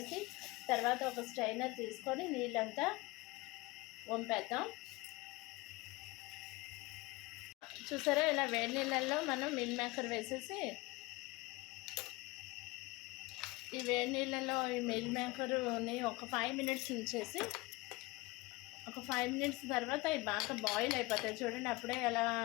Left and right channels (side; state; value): right; quieter; 22.5 dB